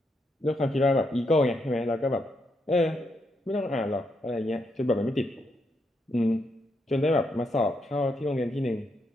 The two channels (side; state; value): both; normal; correlation 0.79